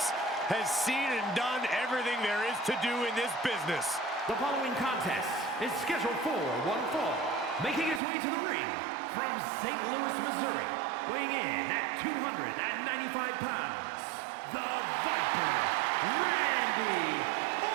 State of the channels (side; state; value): left; drops out; at 8.0 s